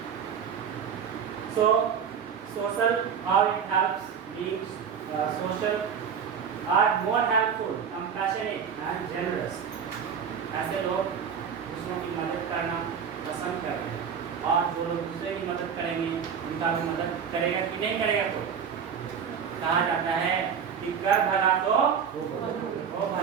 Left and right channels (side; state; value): left; quieter; 7.2 dB